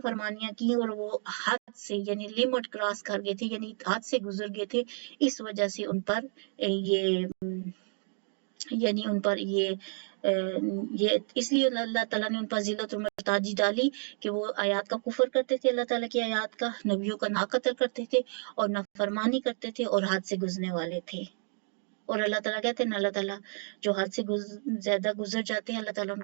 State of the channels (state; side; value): silent; left; 57 dB below the other